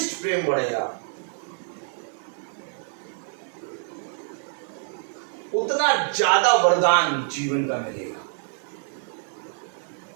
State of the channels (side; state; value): left; silent; 55 dB below the other